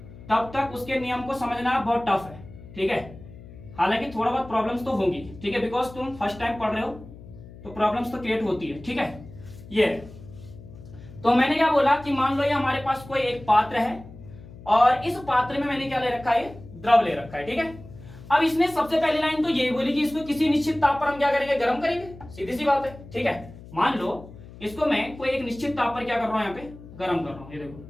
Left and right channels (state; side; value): noise; left; hum, 17 dB below the sound